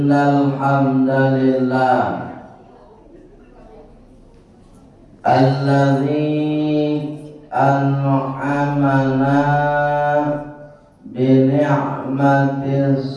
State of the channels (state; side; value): identical; both; correlation 1.00